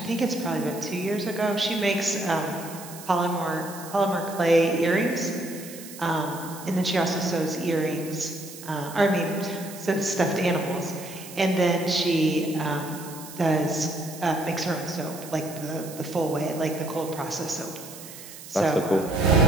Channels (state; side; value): noise; right; hiss, 15 dB below the sound